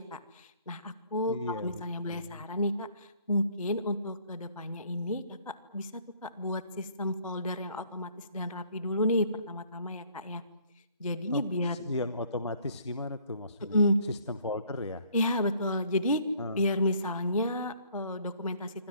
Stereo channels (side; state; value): both; inverted; correlation -0.60